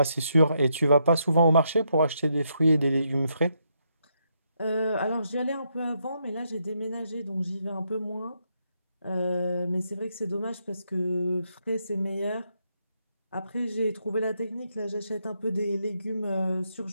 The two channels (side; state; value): both; inverted; correlation -0.78